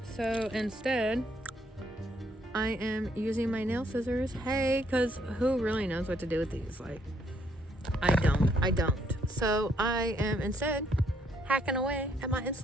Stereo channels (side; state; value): both; normal; correlation 0.70